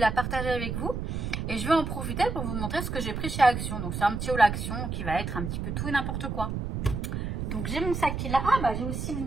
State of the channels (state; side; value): noise; right; rumble, 3 dB below the sound